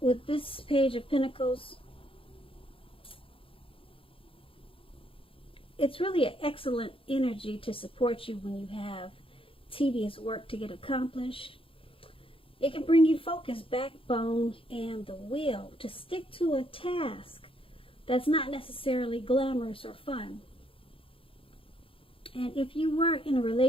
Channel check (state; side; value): late; right; 0.26 ms